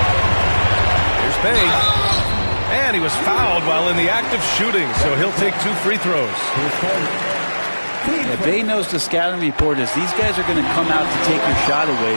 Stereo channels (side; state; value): both; inverted; correlation -1.00